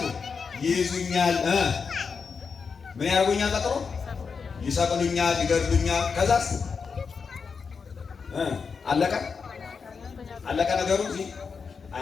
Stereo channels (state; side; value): quieter; right; 5.5 dB